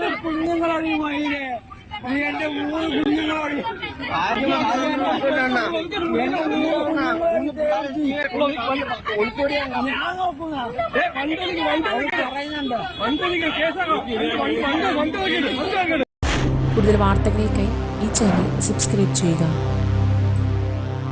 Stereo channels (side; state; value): both; identical; correlation 1.00